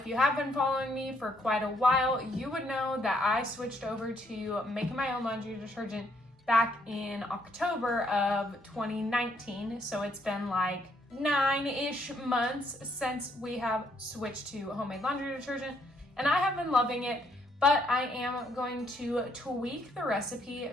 you have been following me for quite a while, you would know that I switched over to making my own laundry detergent back in October of 2019, so it's been like 9-ish months since we have switched to homemade laundry detergent, and I have been loving it, but I am going to tweak the recipe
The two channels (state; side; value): normal; both; correlation 0.71